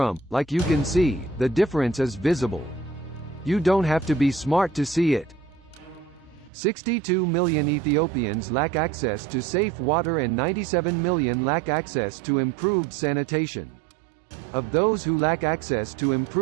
like you can see, the difference is visible. You don't have to be smart to see it. 62 million Ethiopians lack access to safe water and 97 million lack access to improved sanitation. Of those who lack access to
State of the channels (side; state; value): left; drops out; at 6.5 s